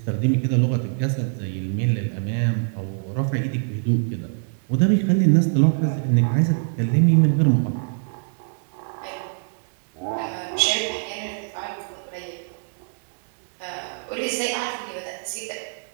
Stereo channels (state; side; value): silent; left; digital silence